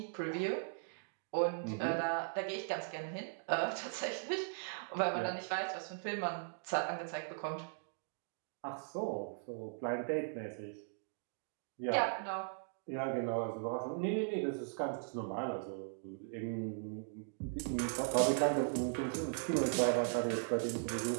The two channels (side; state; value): left; silent; digital silence